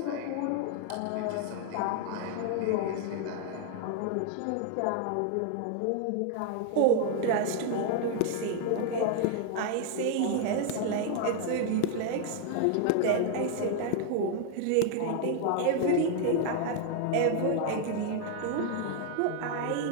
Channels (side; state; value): both; different; correlation 0.00